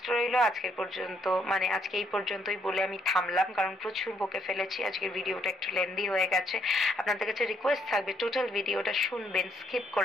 রইল আজকের পর্যন্ত, মানে আজকে এই পর্যন্তই বলে আমি থামলাম, কারণ প্রচুর বকে ফেলেছি, আজকের ভিডিওটা একটু লেন্দি হয়ে গেছে। আপনাদের কাছে রিকোয়েস্ট থাকবে টোটাল ভিডিওটা শুনবেন, স্কিপ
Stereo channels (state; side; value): normal; both; correlation 0.71